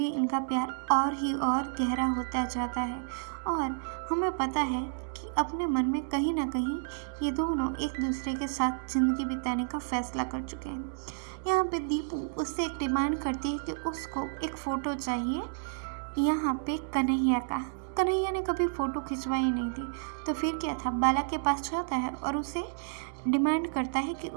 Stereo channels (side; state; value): left; silent; 57 dB below the other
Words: इनका प्यार और ही और गहरा होता जाता है और हमें पता है कि अपने मन में कहीं ना कहीं ये दोनों एक दूसरे के साथ ज़िंदगी बिताने का फैसला कर चुके हैं। यहाँ पे दीपू उससे एक डिमांड करती है कि उसको एक फ़ोटो चाहिए यहाँ पे कन्हैया का। कन्हैया ने कभी फ़ोटो खिंचवाई नहीं थी, तो फिर क्या था, बाला के पास जाता है और उसे डिमांड करता है कि